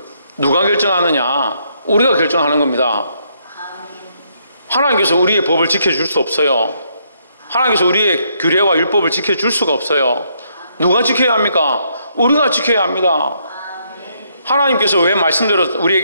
누가 결정하느냐? 우리가 결정하는 겁니다. 하나님께서 우리의 법을 지켜줄 수 없어요. 하나님께서 우리의 규례와 율법을 지켜줄 수가 없어요. 누가 지켜야 합니까? 우리가 지켜야 합니다. 하나님께서 왜 말씀대로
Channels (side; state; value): both; inverted; correlation -0.73